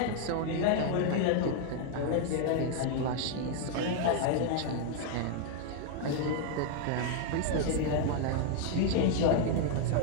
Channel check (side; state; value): both; different; correlation 0.00